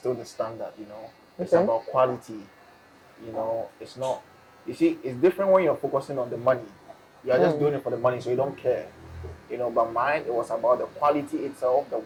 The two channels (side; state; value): both; identical; correlation 1.00